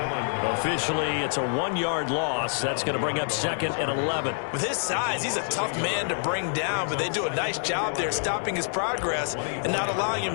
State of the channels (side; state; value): right; silent; digital silence